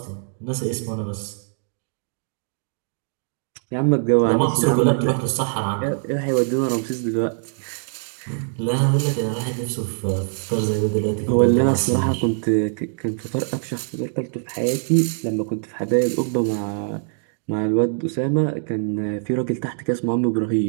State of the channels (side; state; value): left; silent; digital silence